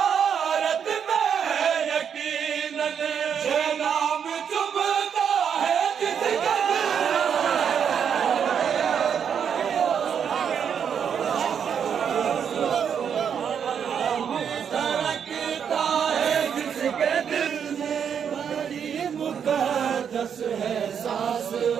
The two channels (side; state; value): left; quieter; 7.7 dB